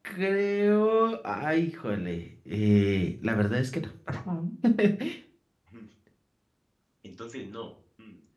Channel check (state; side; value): identical; both; correlation 1.00